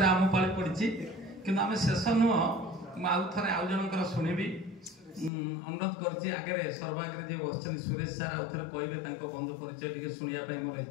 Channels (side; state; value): right; drops out; at 5.3 s